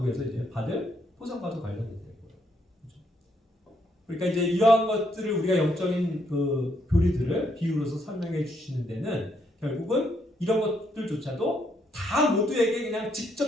이제 받을 보상과도 관련이 되는 거예요. 그렇죠? 그러니까 이제 이러한 것들을 우리가 영적인 그 교리들을 비유로서 설명해 주시는 데는 결국은 이런 것들조차도 다 모두에게 그냥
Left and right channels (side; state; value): both; normal; correlation 0.74